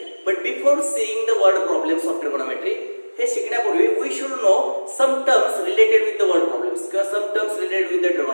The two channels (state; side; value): inverted; both; correlation -1.00